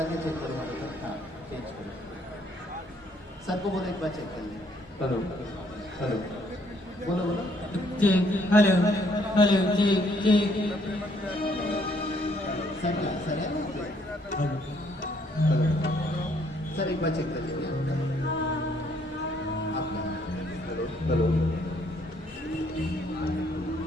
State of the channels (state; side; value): normal; both; correlation 0.67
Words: के चेक करो। हाँ चेंज करो। सर को बोलो एक बार चेक कर लें। हेलो हेलो बोलो बोलो। Check hello hello check check sir है हेलो सर एक बार चेक कर लीजिए आपका। Hello hello